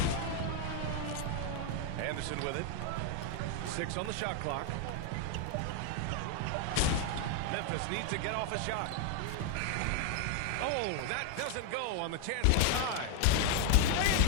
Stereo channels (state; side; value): different; both; correlation 0.00